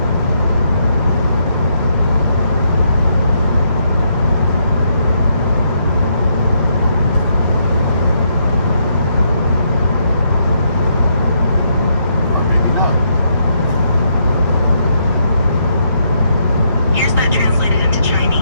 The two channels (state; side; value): inverted; both; correlation -0.75